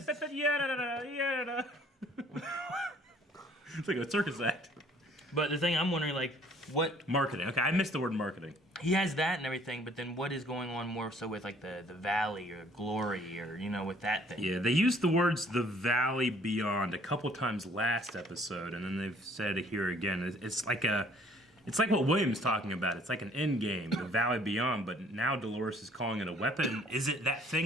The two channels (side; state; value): both; normal; correlation 0.58